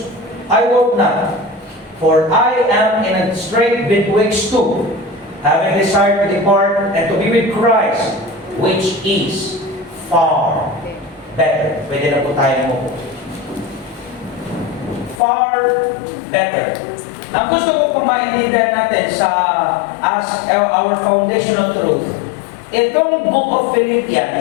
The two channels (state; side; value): drops out; right; at 15.2 s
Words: I work not. For I am in a strait betwixt two, having desired to depart and to be with Christ, which is far better. Pwede na po tayo mo po. Far better. Ang gusto ko pang maintindihan natin as our foundational truth, itong book of